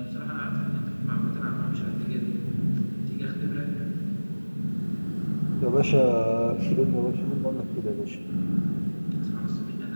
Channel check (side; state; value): both; inverted; correlation -1.00